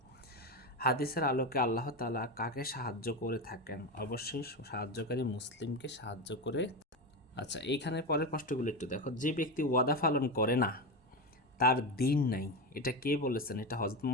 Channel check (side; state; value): both; normal; correlation 0.16